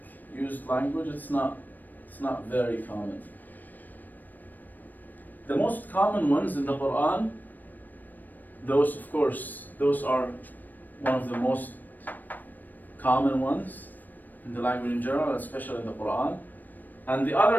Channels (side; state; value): right; late; 0.088 ms